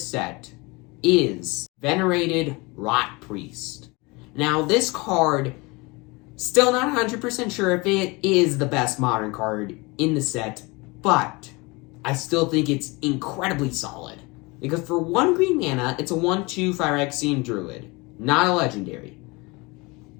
set is Venerated Rot Priest. Now this card, still not 100% sure if it is the best modern card in the set, but I still think it's incredibly solid. Because for 1 green mana, it's a 1/2 Phyrexian Druid, not a legendary.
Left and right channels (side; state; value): right; quieter; 25.6 dB